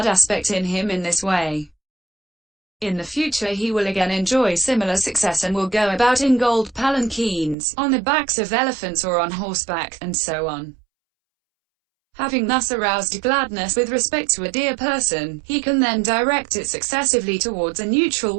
aspect in him in this way. In the future he will again enjoy similar success and will go about in gold palanquins, on the backs of elephants or on horseback, and so on. Having thus aroused gladness with respect to a dear person, he can then direct it successively towards a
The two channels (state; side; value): drops out; left; at 7.6 s